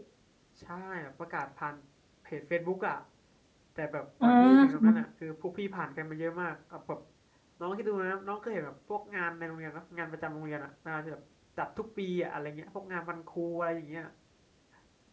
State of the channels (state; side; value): identical; both; correlation 1.00